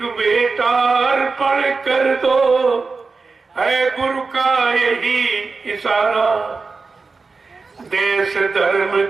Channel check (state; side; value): quieter; left; 4.3 dB